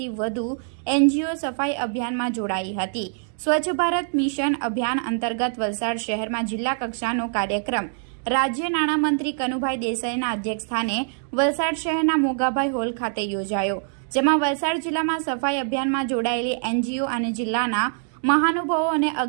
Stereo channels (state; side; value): silent; left; digital silence